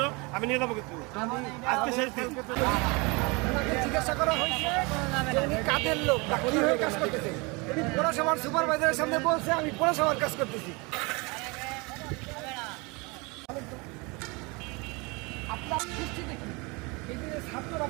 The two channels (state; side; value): quieter; left; 27.6 dB